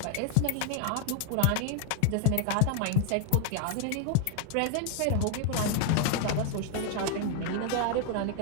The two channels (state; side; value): different; both; correlation 0.01